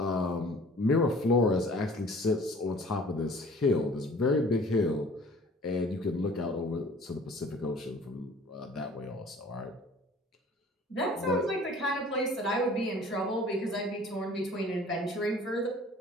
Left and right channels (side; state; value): both; normal; correlation 0.50